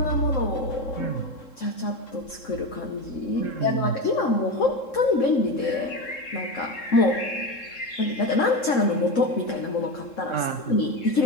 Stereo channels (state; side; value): late; right; 3.7 ms